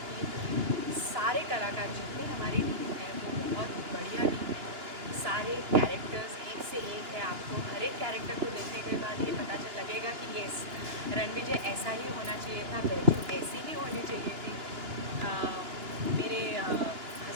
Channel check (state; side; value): late; left; 2.9 ms